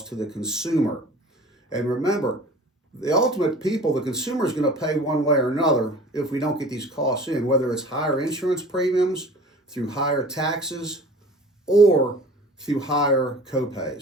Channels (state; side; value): normal; both; correlation 0.43